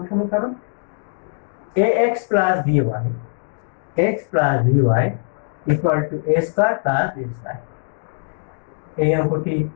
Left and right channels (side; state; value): right; silent; digital silence